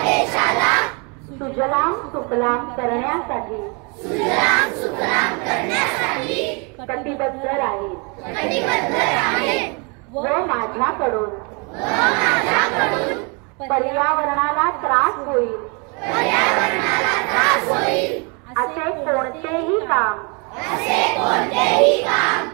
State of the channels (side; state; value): left; quieter; 33.1 dB